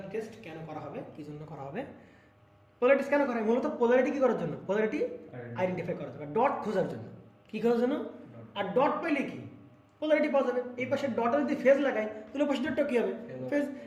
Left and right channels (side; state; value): both; identical; correlation 1.00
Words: test কেন করা হবে, কি জন্য করা হবে? পোলারিটি টেস্ট কেন করা হয়? মূলত পোলারিটি কি করার জন্য? পোলারিটি আইডেন্টিফাই করার জন্য, ডট খোঁজার জন্য। কি খোঁজার জন্য? আর ডট পেলে কি পোলারিটি পাওয়া যাবে। এই পাশে ডটে যদি ফেজ লাগাই তাহলে পাশে ডটটা কি হবে? ফেজ।